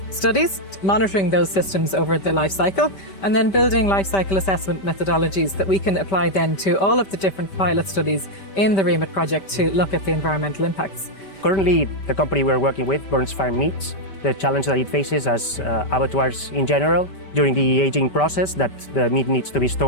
studies, monitoring those systems over the life cycle, and then building life cycle assessment methodologies that we can apply then to all of the different pilot studies in the REAMIT project to look at the environmental impacts. Currently, the company we're working with, Burns Farm Meats, the challenge that it faces as abattoirs in general, during the aging process, that the meat needs to be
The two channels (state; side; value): late; right; 5.1 ms